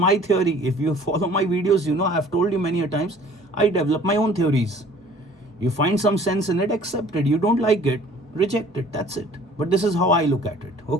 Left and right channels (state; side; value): normal; both; correlation 0.52